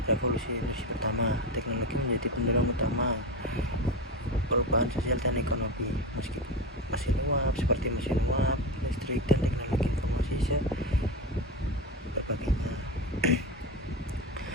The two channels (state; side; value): normal; both; correlation 0.20